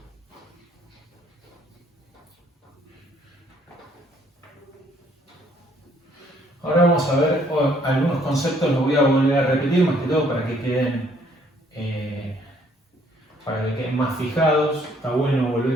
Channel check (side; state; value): both; normal; correlation 0.64